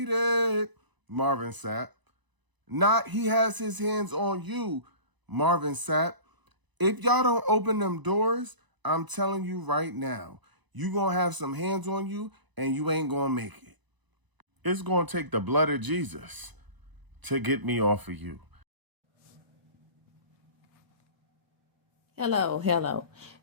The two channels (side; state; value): left; late; 1.0 ms